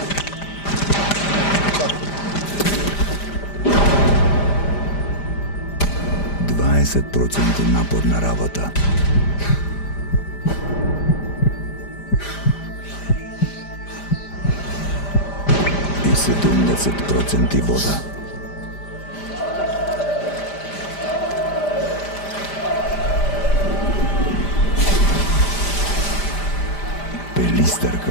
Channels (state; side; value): late; right; 5.0 ms